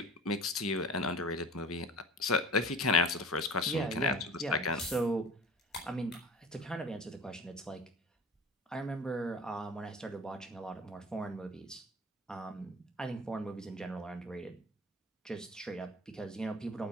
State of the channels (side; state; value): both; normal; correlation 0.39